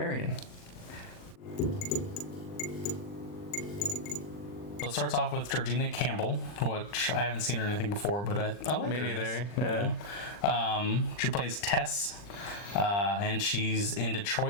So it starts off with Georgina Campbell, which I haven't seen her in anything before, but I like Me her in neither. this. Yeah. She plays Tess, and she's in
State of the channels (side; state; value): right; late; 40 ms